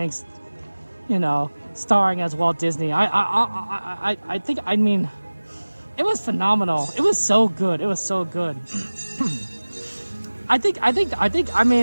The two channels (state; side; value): inverted; both; correlation -1.00